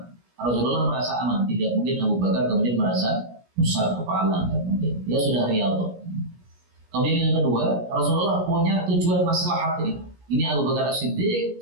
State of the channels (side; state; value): left; late; 17 ms